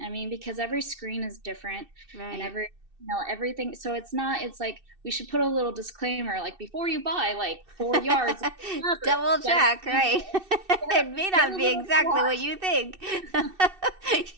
I mean, because every screen is different, and everything. So it's like we should put a little disclaimer, like before you buy like 4 yards, double check, right? It may not be exactly what you think. Yes,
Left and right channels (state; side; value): late; left; 2.6 ms